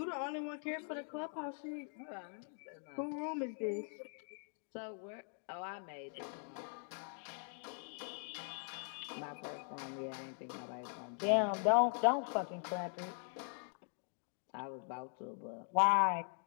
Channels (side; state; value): right; silent; 50 dB below the other